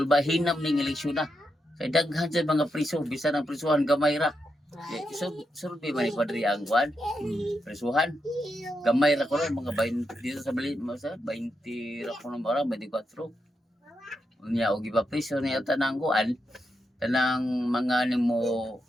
ning eleksyon na kay daghan sa mga priso bisan ang prisuhan gamay ra survey man ni Padre ang kwan prisuhan gamay ra ko mga 20 dito sa Bali 20 ra ko ng bara 24 unya og ipapriso niya tanang kuan tanang mga nimo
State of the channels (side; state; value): both; normal; correlation 0.84